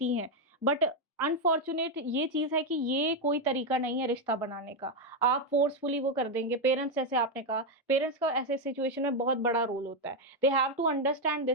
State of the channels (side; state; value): both; normal; correlation 0.04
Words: हैं, but अनफॉर्चुनेट ये चीज है कि ये कोई तरीका नहीं है रिश्ता बनाने का. आप फोर्सफुली वो कर देंगे. पेरेंट्स, जैसे आपने कहा, पेरेंट्स का ऐसे सिचुएशन में बहुत बड़ा रोल होता है. They have to understand